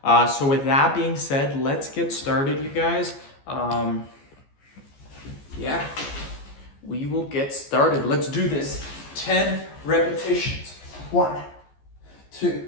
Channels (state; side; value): late; right; 14 ms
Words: So with that being said, let's get started, you guys. Yeah, we will get started. Let's do this. 10 repetitions. 1,